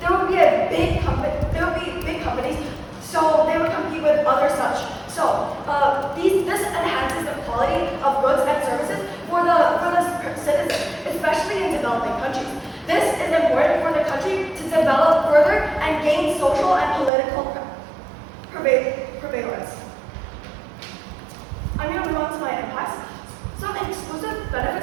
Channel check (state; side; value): drops out; left; at 17.1 s